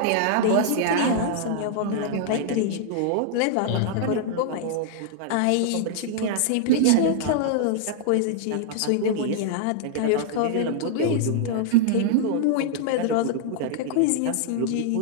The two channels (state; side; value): different; both; correlation -0.01